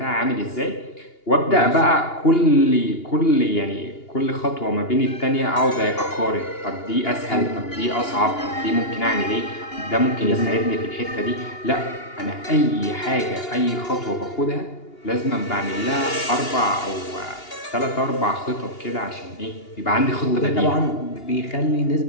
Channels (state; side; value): late; right; 2.8 ms